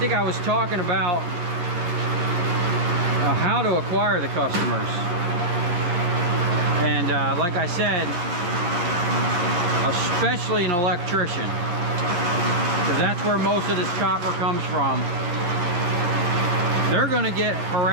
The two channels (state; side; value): late; left; 11 ms